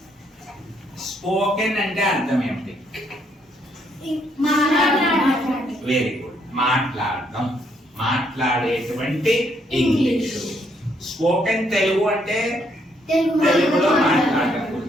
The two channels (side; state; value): both; normal; correlation 0.71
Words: స్పోకెన్ అంటే అర్థం ఏమిటి? Very good. మాట్లాడడం, మాట్లాడేటువంటి ఇంగ్లీష్. స్పోకెన్ తెలుగు అంటే తెలుగులో మాట్లాడడం